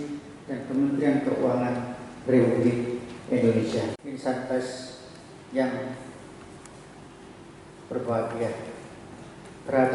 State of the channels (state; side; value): identical; both; correlation 1.00